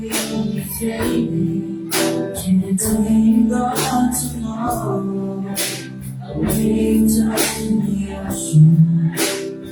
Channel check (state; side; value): identical; both; correlation 1.00